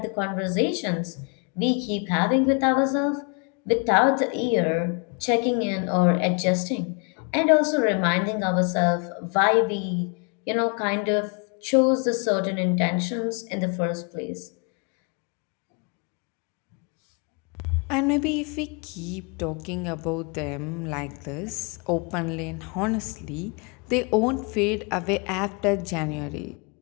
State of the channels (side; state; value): right; quieter; 34.8 dB